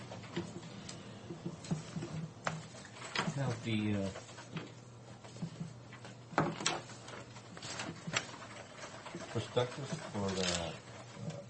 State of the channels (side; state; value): both; identical; correlation 1.00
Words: Now, the prospectus for the